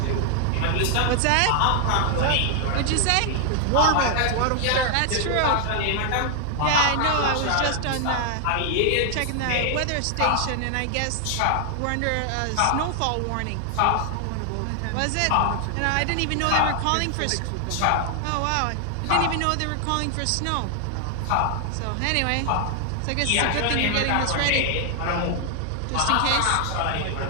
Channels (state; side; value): different; both; correlation 0.00